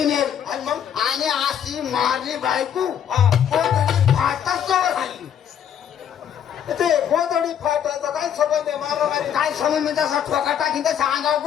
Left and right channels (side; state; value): right; quieter; 9.1 dB